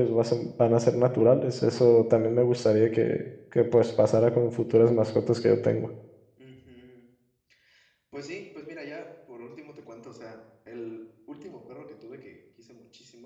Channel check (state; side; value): identical; both; correlation 1.00